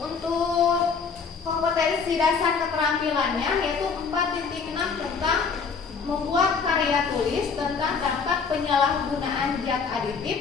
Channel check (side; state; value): right; quieter; 5.5 dB